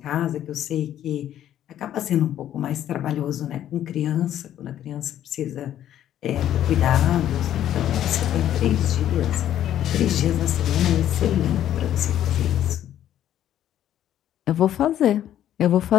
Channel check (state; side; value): quieter; right; 11.4 dB